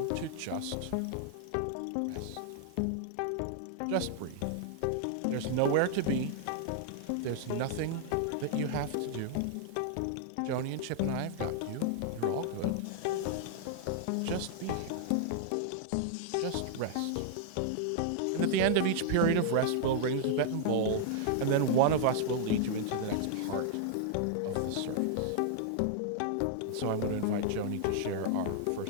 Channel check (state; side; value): different; both; correlation -0.01